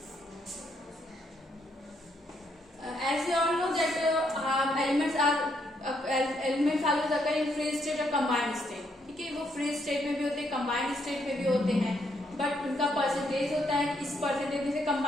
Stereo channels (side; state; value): both; normal; correlation 0.74